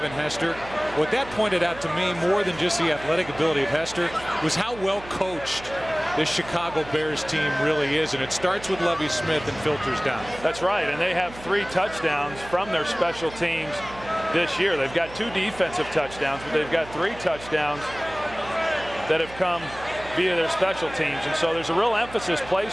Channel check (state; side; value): noise; right; hum, 17 dB below the sound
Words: Hester. What that pointed out to me, more than just the athletic ability of Hester, was how well coached this Chicago Bears team really is, and it starts with Lovie Smith and filters down. That's right, and they have 3 touchdowns from their special teams this year. They've got 2 defensive touchdowns, but they've got 3 touchdowns that have come via their special teams, and so there's a real emphasis